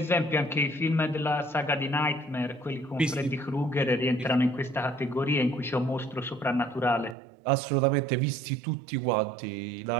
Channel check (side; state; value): left; drops out; at 7.2 s